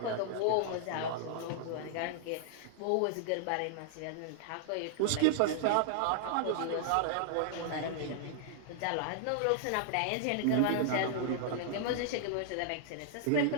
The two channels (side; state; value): both; different; correlation -0.01